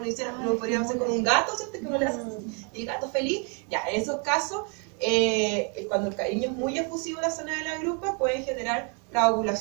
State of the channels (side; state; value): left; quieter; 37.1 dB